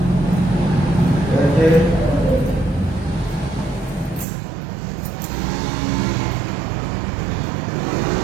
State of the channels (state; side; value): drops out; left; at 4.2 s